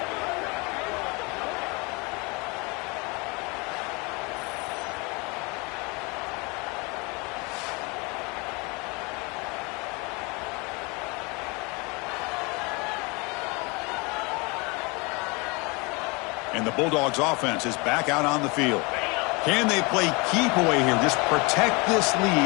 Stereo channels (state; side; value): quieter; right; 28.2 dB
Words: And the Bulldogs offense is back out on the field. Can they play keep away here? Just protect this